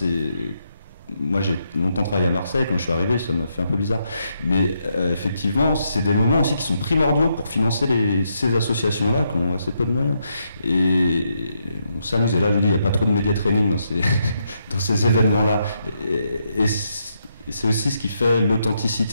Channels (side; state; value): both; inverted; correlation -0.79